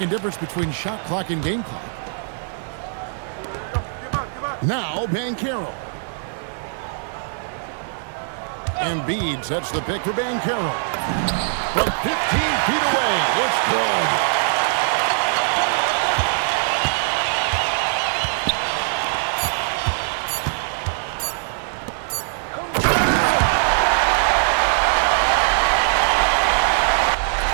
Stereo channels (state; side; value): silent; left; digital silence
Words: difference between shot clock and game clock. Now Bankero. Embiid sets the pick for Bankero. From 15 feet away, it's good.